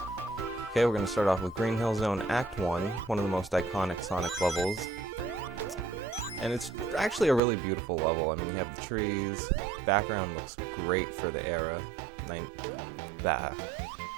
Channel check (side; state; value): left; drops out; at 7.4 s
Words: Okay, we're going to start off with Green Hill Zone Act 1, one of the most iconic Sonic levels. And it's actually a really beautiful level. I mean, you have the trees, background looks great for the era,